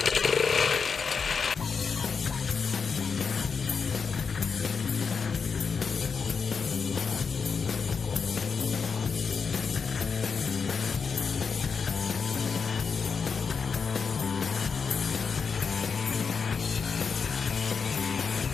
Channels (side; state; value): right; quieter; 5.6 dB